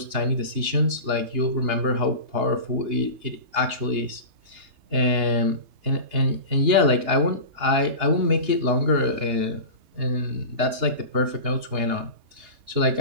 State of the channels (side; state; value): left; late; 2.8 ms